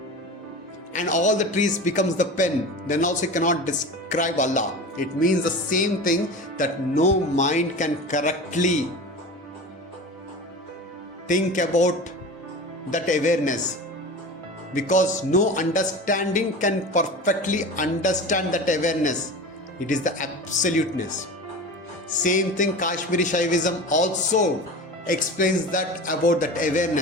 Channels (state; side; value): normal; both; correlation 0.32